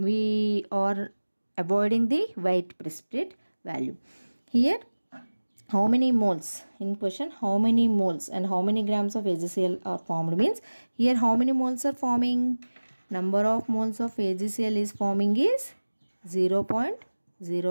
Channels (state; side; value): inverted; both; correlation -1.00